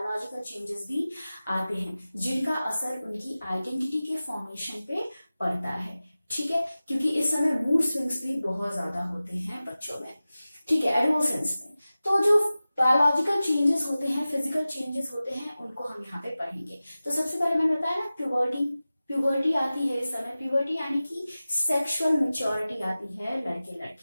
चेंजेस भी आते हैं, जिनका असर उनकी आइडेंटिटी के फॉर्मेशन पे पड़ता है। ठीक है, क्योंकि इस समय मूड स्विंग्स भी बहुत ज्यादा होते हैं बच्चों में। ठीक है, एडोलसेंस में तो जो बायोलॉजिकल चेंजेस होते हैं, फिजिकल चेंजेस होते हैं, उनको हम यहाँ पे पढ़ेंगे। तो सबसे पहले मैंने बताया ना, प्यूबर्टी आती है इस समय। प्यूबर्टी यानी कि सेक्सुअल मैच्योरिटी आती है लड़के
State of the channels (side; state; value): both; inverted; correlation -0.96